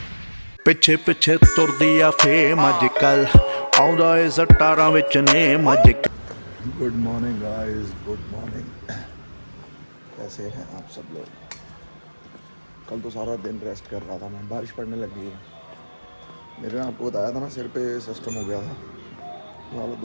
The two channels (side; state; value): both; inverted; correlation -1.00